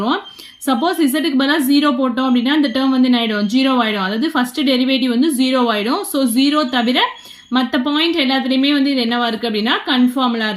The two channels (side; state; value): both; identical; correlation 1.00